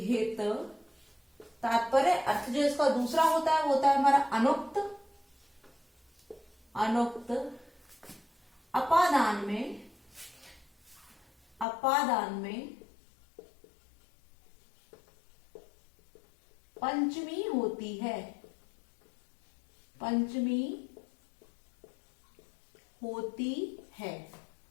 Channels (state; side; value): drops out; right; at 11.7 s